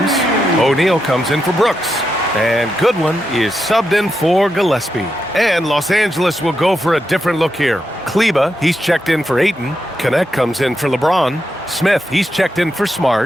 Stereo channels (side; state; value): both; normal; correlation 0.85